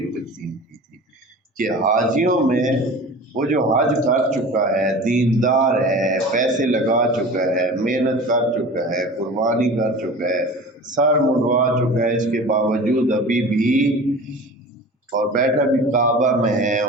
تقسیم کی تھی کہ حاجیوں میں وہ جو حج کر چکا ہے، دیندار ہے، پیسے لگا چکا ہے، محنت کر چکا ہے، قربانی کر چکا ہے، سر منڈوا چکا ہے، اس کے باوجود ابھی بھی اور بیٹھا بھی کعبہ میں ہے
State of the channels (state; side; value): normal; both; correlation 0.37